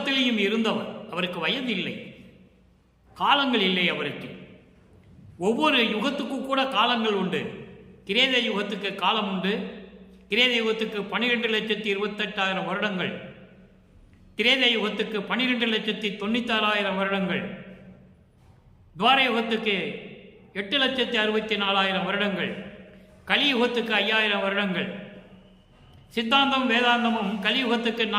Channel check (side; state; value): both; identical; correlation 1.00